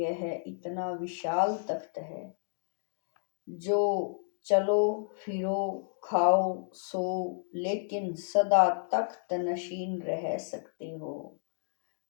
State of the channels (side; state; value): right; silent; digital silence